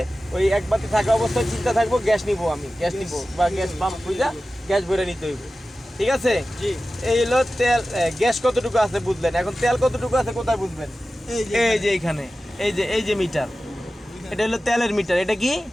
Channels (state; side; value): normal; both; correlation 0.95